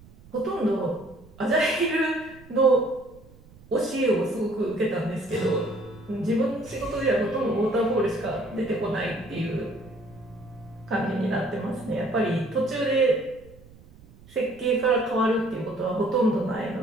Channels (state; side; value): noise; right; rumble, 23 dB below the sound